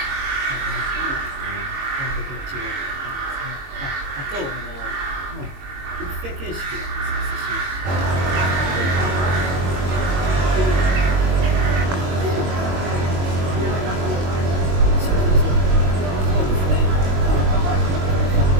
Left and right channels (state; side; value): late; left; 22 ms